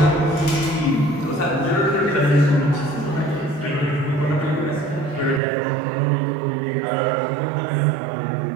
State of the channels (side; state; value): left; drops out; at 5.4 s